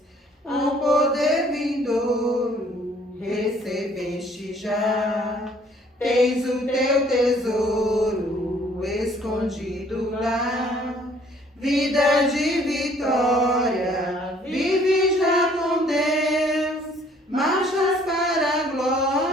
O poder vindouro recebeste já. Tens o teu tesouro escondido lá. Vida de vitória, vive já com Deus. Marchas para a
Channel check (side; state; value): both; normal; correlation 0.59